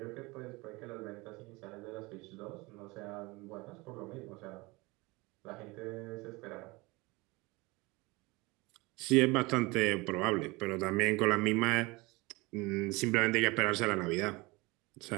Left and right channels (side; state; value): left; quieter; 24.0 dB